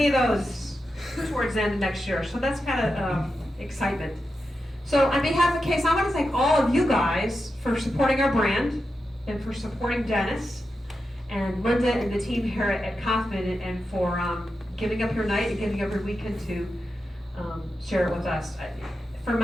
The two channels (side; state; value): both; normal; correlation 0.89